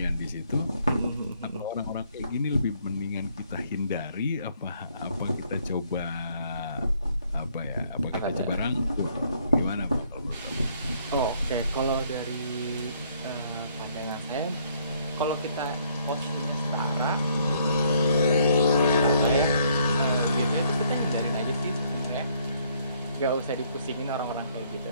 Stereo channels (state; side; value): inverted; both; correlation -0.66